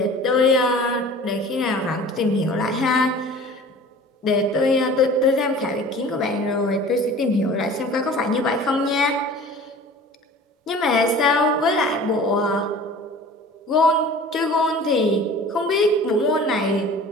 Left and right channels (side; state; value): both; normal; correlation 0.43